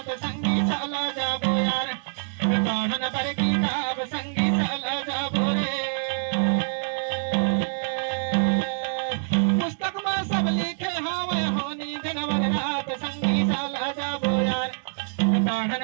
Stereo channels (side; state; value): left; silent; 61 dB below the other